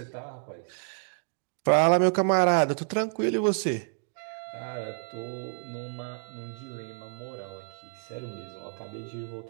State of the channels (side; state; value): left; silent; 58 dB below the other